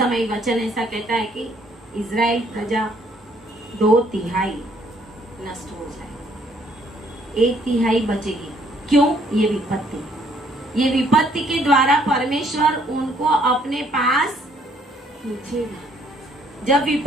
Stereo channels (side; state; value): both; normal; correlation 0.65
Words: वचन ऐसा कहता है कि इजराइल प्रजा 2/3 नष्ट हो जाए, 1/3 बचेगी। क्यों? ये विपत्ति के द्वारा परमेश्वर उनको अपने पास पूछेगा। जब